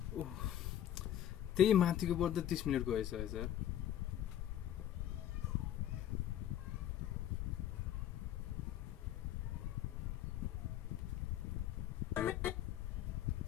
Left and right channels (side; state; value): right; quieter; 11.4 dB